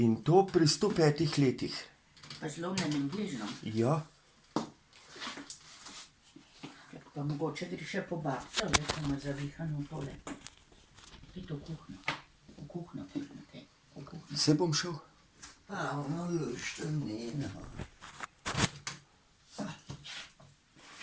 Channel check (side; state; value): both; identical; correlation 1.00